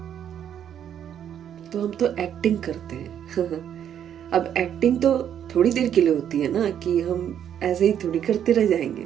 तो हम तो एक्टिंग करते हैं। अब एक्टिंग तो थोड़ी देर के लिए होती है ना, कि हम ऐसे ही थोड़ी करते रह जाएंगे।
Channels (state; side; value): quieter; left; 9.5 dB